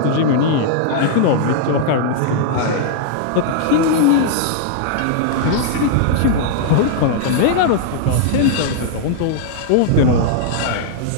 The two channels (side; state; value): both; different; correlation -0.01